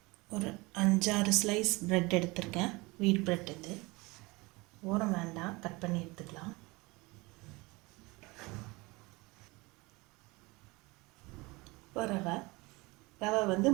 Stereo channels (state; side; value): quieter; left; 24.1 dB